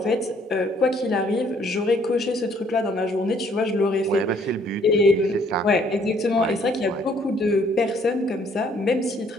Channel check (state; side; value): normal; both; correlation 0.63